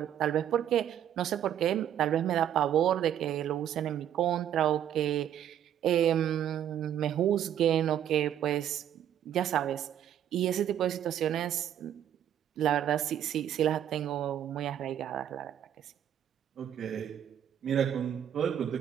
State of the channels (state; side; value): quieter; left; 10.3 dB